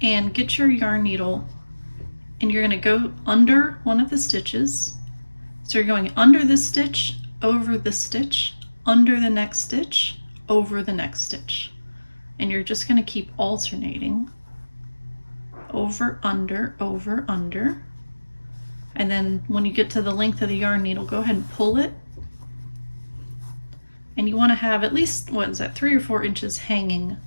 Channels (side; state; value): both; inverted; correlation -1.00